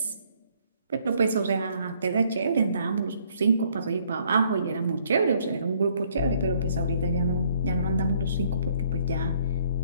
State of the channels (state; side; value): inverted; both; correlation -0.64